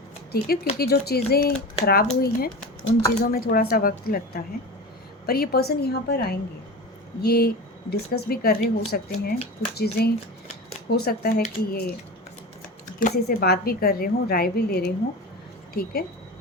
ठीक है, क्योंकि जो चीज़ें ख़राब हुई हैं उन चीज़ों में थोड़ा सा वक्त लगता है, पर ये पर्सन यहाँ पर आएंगे, ये डिस्कस भी कर रहे हो सकते हैं, कुछ चीज़ें हो सकता है कि ये किसी से बात भी कर रहे हों, राय भी ले रहे हों, ठीक है।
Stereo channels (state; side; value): normal; both; correlation 0.29